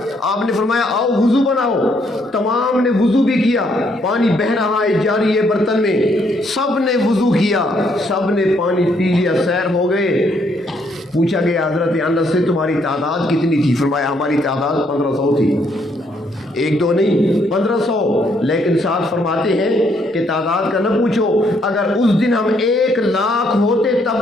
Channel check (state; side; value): normal; both; correlation 0.71